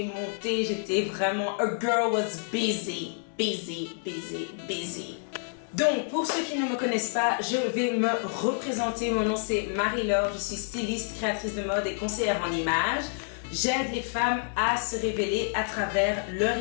monter, j'étais vraiment... A girl was busy. Donc, pour ceux qui ne me connaissent pas, je vais me représenter. Mon nom c'est Marie-Laure, je suis styliste, créatrice de mode et conseillère en images. J'aide les femmes à se révéler à travers leur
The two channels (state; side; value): silent; right; 59 dB below the other